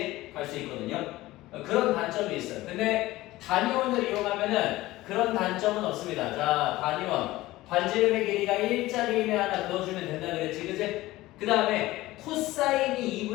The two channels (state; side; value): quieter; right; 17.7 dB